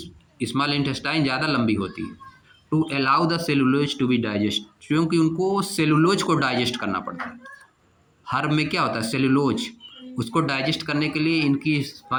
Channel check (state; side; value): identical; both; correlation 1.00